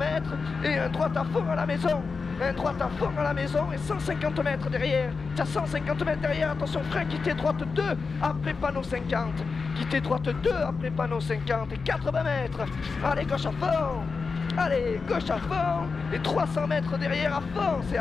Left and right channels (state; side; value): quieter; right; 4.7 dB